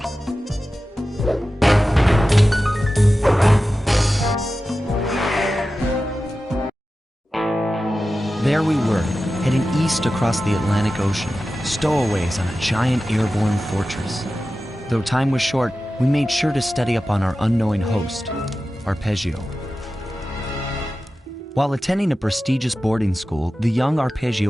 we were, heading east across the Atlantic Ocean, stowaways on a giant airborne fortress. Though time was short, we made sure to study up on our unknowing host, Arpeggio. While attending a prestigious boarding school, the young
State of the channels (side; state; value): both; normal; correlation 0.94